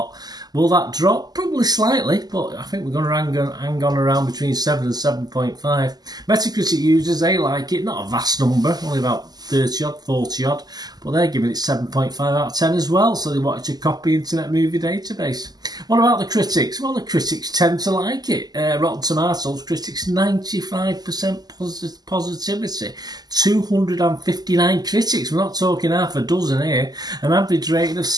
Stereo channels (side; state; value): left; late; 0.20 ms